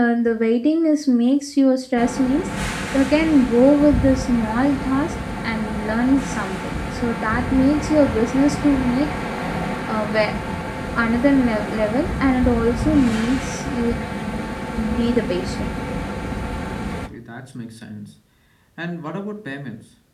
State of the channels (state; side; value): identical; both; correlation 1.00